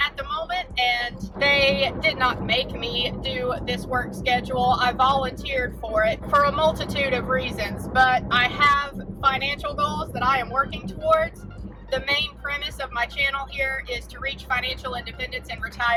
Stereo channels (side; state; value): both; identical; correlation 1.00